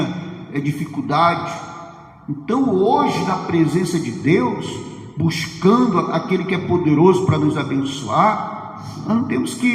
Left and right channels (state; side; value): identical; both; correlation 1.00